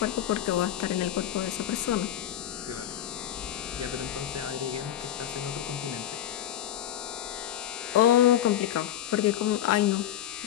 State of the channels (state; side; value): quieter; right; 11.5 dB